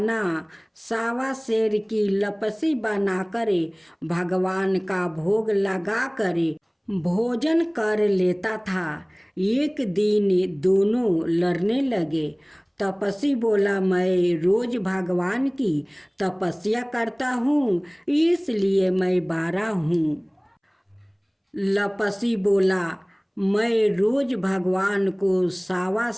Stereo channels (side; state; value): both; identical; correlation 1.00